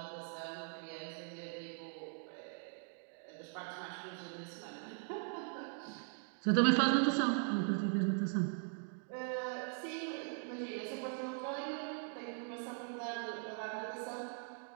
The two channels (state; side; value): silent; left; 51 dB below the other